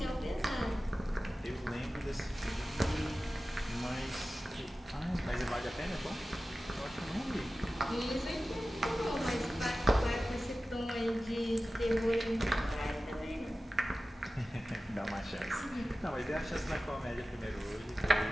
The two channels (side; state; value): both; normal; correlation 0.95